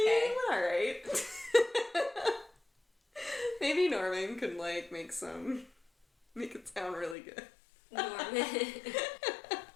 Alright. Maybe Norman could, like, make it sound really good. Norman.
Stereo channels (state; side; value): drops out; right; at 7.2 s